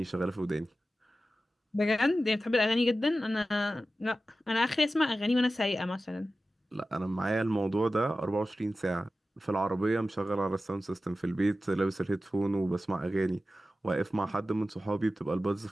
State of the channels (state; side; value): normal; both; correlation 0.94